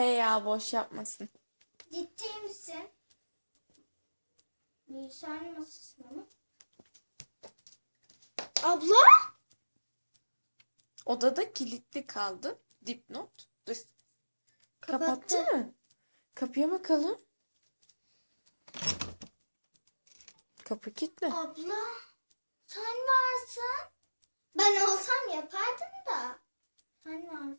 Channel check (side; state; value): both; inverted; correlation -1.00